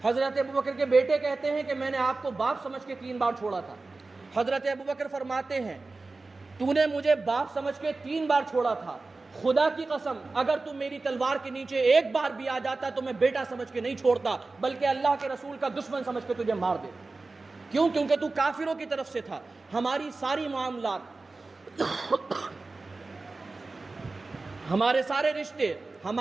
حضرت ابوبکر کے بیٹے کہتے ہیں کہ میں نے آپ کو باپ سمجھ کے 3 بار چھوڑا تھا. حضرت ابوبکر فرماتے ہیں تو نے مجھے باپ سمجھ کے 3 بار چھوڑا تھا, خدا کی قسم اگر تم میری تلوار کے نیچے ایک بار بھی آ جاتا تو میں بیٹا سمجھ کے نہیں چھوڑتا بلکہ اللہ کے رسول کا دشمن سمجھ کے تجھے مار دے. کیوں؟ کیونکہ تو کافروں کی طرف سے تھا. ہماری ساری معاملات, ہمارے سارے رشتے,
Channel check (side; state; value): left; quieter; 3.6 dB